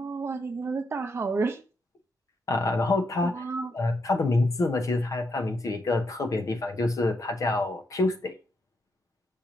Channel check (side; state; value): both; normal; correlation 0.80